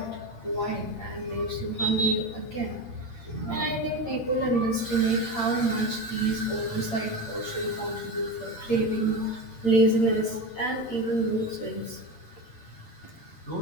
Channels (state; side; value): late; right; 8.8 ms